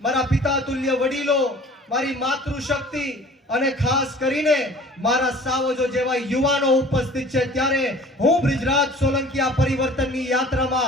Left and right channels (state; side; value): normal; both; correlation 0.47